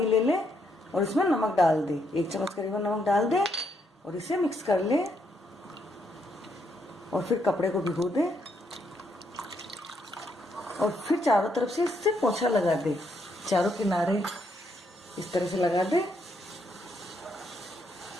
ले ले और इसमें नमक डाल दे, 1 चम्मच करीबन नमक डाल दे और इसे मिक्स कर ले और फिर कपड़े को भिगो दे और फिर चारों तरफ से इससे पोंछा लगा दे, चारों किनारे इस तरह से लगा दे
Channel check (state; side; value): normal; both; correlation 0.76